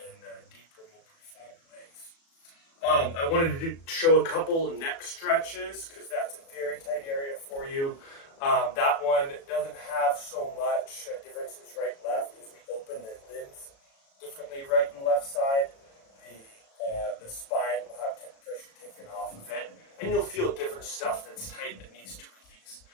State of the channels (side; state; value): right; late; 36 ms